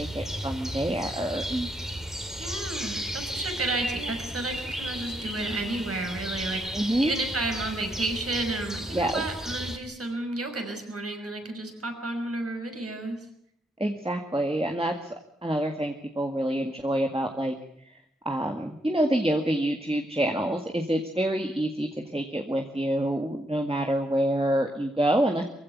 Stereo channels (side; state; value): both; normal; correlation 0.77